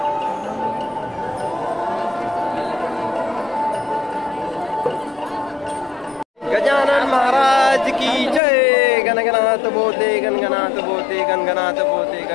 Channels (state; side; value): drops out; right; at 8.4 s